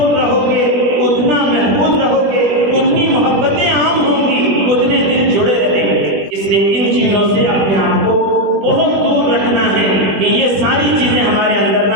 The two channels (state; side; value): late; left; 21 ms